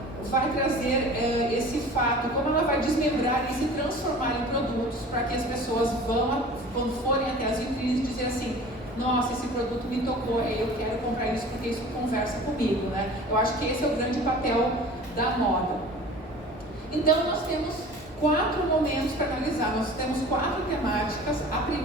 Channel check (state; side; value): normal; both; correlation 0.42